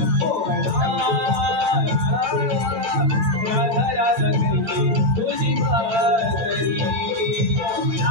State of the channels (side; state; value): left; late; 8.9 ms